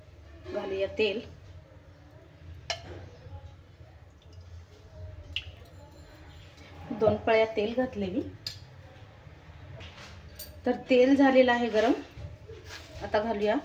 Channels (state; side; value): identical; both; correlation 1.00